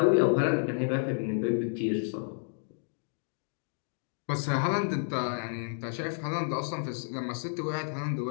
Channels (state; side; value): silent; right; digital silence